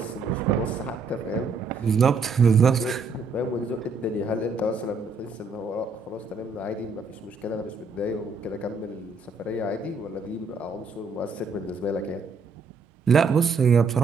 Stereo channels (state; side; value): quieter; left; 4.2 dB